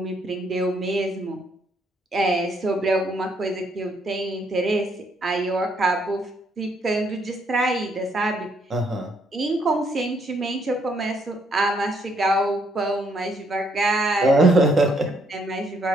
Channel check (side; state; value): both; normal; correlation 0.71